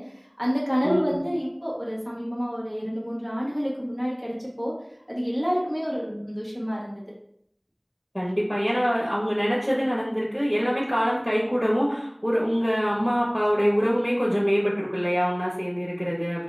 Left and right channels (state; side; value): identical; both; correlation 1.00